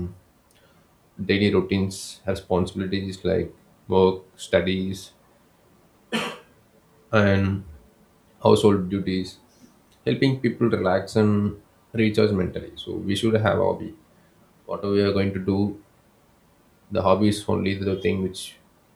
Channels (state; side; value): identical; both; correlation 1.00